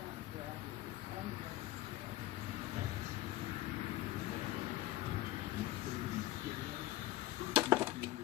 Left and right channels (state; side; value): quieter; right; 15.9 dB